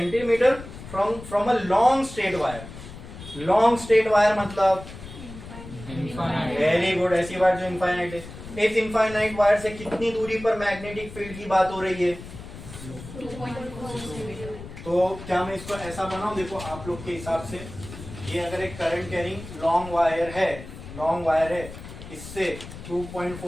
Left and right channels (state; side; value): noise; left; rumble, 13 dB below the sound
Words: from a long straight wire. Long straight wire मतलब वेरी गुड, ऐसी बात जो इनफाइनाइट है। इस इनफाइनाइट वायर से कितनी दूरी पर मैग्नेटिक फील्ड की बात हो रही है? 2.4 तो क्या मैं इसको ऐसा बनाऊं? देखो आप लोग के हिसाब से ये अगर एक करंट कैरिंग लॉन्ग वायर है, इससे